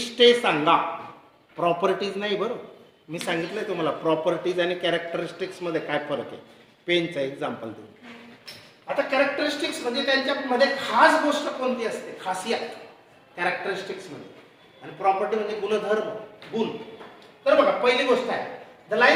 सांगा, प्रॉपर्टीज नाही. बरोबर, मी सांगितलंय तुम्हाला प्रॉपर्टीज आणि कॅरेक्टरिस्टिक्स मध्ये काय फरक आहे. पेनचं एक्झाम्पल देऊ. आता कॅरेक्टरिस्टिक्स म्हणजे त्यांच्यामध्ये खास गोष्ट कोणती असते, खासियत कॅरेक्टरिस्टिक्स मध्ये, आणि प्रॉपर्टी म्हणजे गुणधर्म, गुण. तर बघा पहिली गोष्ट आहे, the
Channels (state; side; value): identical; both; correlation 1.00